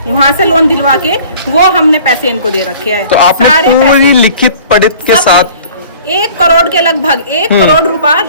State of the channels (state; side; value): inverted; both; correlation -0.49